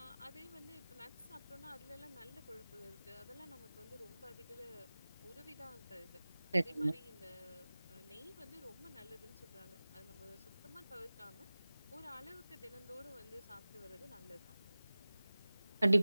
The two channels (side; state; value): both; inverted; correlation -0.98